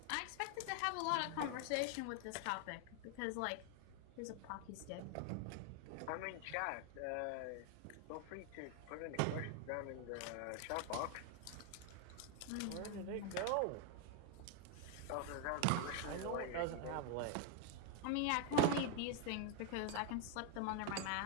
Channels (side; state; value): both; different; correlation 0.01